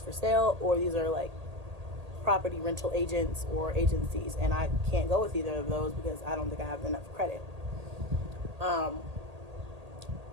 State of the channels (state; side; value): late; left; 1.8 ms